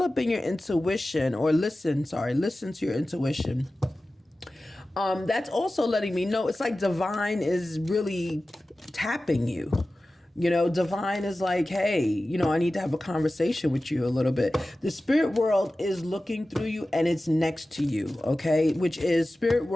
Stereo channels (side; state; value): both; normal; correlation 0.95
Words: your intuition, or listen to your intuition. That's also letting me know it's like divine is really tapping you. Divine is like, hey, I need to have a conversation with you a little bit. The spirit world is looking through you and it's next to you, okay? Which is spirit